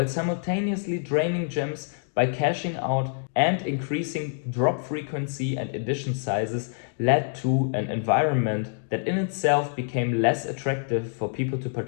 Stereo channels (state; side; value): silent; right; digital silence